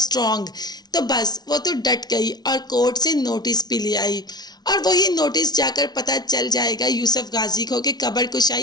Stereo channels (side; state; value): right; late; 0.19 ms